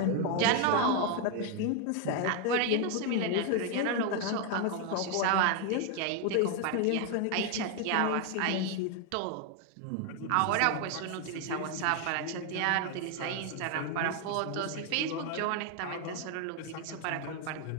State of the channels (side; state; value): both; different; correlation 0.01